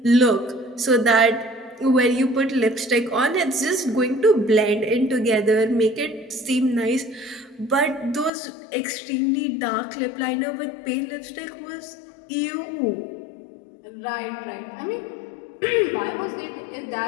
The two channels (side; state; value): right; drops out; at 8.3 s